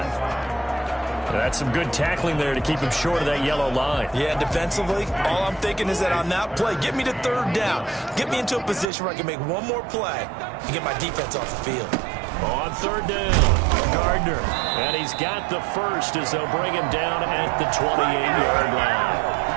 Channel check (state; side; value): drops out; left; at 8.8 s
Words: That's some good tackling there to keep him short of that yellow line. Yeah, defensively, all I'm thinking is that on that play, get me to 3rd down. Get me into a position where I can make one more play and get my defense off the field. On 3rd down, Gardner. And he's got the 1st as they'll bring him down at the 28-yard line.